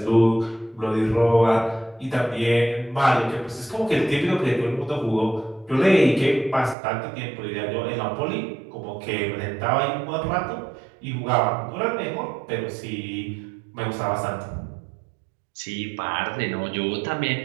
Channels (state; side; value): drops out; left; at 6.8 s